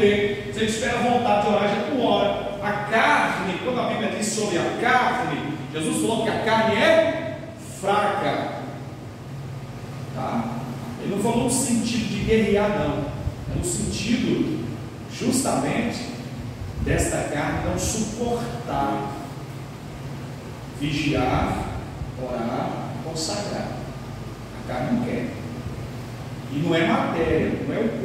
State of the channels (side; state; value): both; identical; correlation 1.00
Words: Se a gente espera vontade de orar, a gente não ora. A carne, quando a Bíblia diz sobre a carne, Jesus falou que a carne é fraca, tá? Ele não falou no sentido de guerrear, não. É no sentido justamente desta carne não suportar vigiar, orar, consagrar. A carne não quer. E não é matéria, não é o